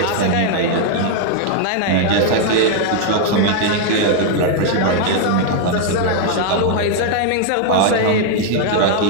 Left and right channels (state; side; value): different; both; correlation 0.00